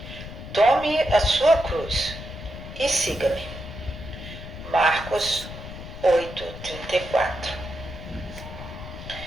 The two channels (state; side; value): noise; left; rumble, 11 dB below the sound